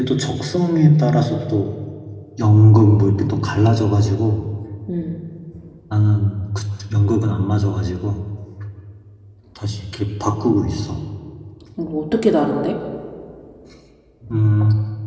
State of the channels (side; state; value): both; identical; correlation 1.00